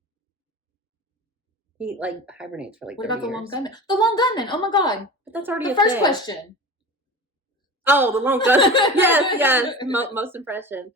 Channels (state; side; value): normal; both; correlation 0.33